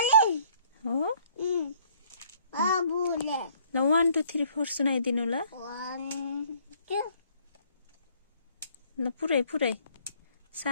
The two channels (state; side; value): inverted; both; correlation -0.61